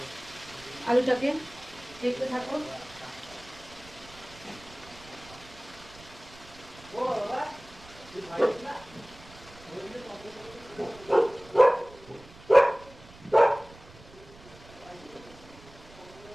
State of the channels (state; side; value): noise; right; rumble, 21 dB below the sound